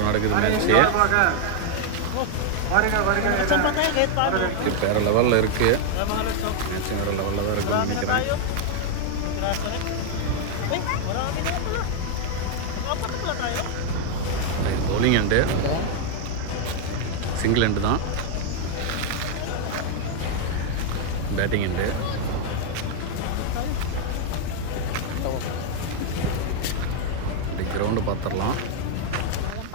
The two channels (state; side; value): different; both; correlation 0.00